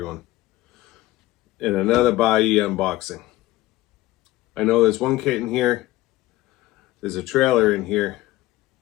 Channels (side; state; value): right; quieter; 17.1 dB